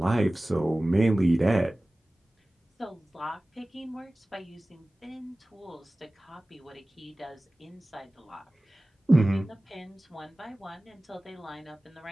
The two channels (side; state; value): both; normal; correlation 0.98